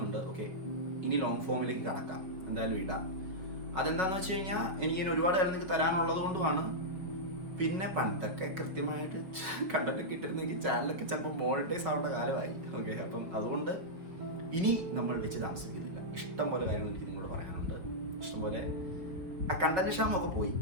ഓക്കെ, ഇനി ലോങ് ഫോമിലേക്ക് കടക്കാം, എന്തായാലും ഇടാം. അതെന്താണെന്ന് വെച്ച് കഴിഞ്ഞാൽ എനിക്കിങ്ങനെ ഒരുപാട് കാര്യം നിങ്ങൾക്ക് തരാനുള്ളത് കൊണ്ടുമാണ്. പിന്നെ പണ്ടൊക്കെ കൃത്യമായിട്ട് കണ്ടൊക്കെ ഇട്ടിരുന്നെങ്കിൽ ചാനലൊക്കെ ചിലപ്പോൾ മോണിറ്റൈസ് ആവേണ്ട കാലമായി. ഓക്കെ, അപ്പം അതുകൊണ്ട് ഇനി നമ്മൾ വെച്ച് താമസിക്കുന്നില്ല. ഇഷ്ടംപോലെ കാര്യങ്ങൾ എനിക്ക് നിങ്ങളോട് പറയാനുണ്ട്. ഇഷ്ടംപോലെ ആ കണ്ടന്റ് ക്ഷാമൊക്കെ പോയി,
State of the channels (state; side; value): late; left; 5.6 ms